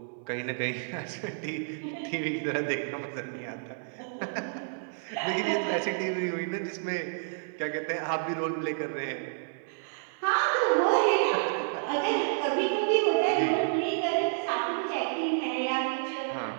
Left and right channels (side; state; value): left; silent; 58 dB below the other